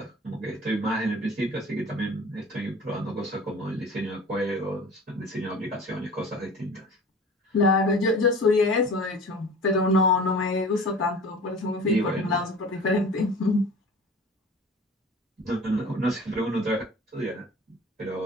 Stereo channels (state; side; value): normal; both; correlation 0.41